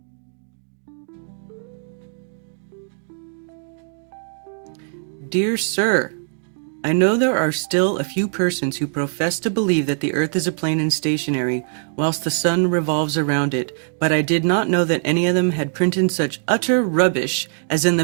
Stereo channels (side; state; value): left; silent; digital silence